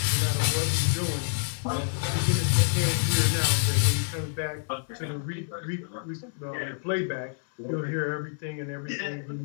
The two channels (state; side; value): silent; right; 57 dB below the other